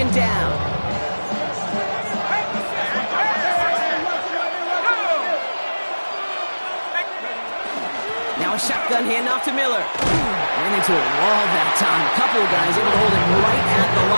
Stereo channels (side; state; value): both; inverted; correlation -1.00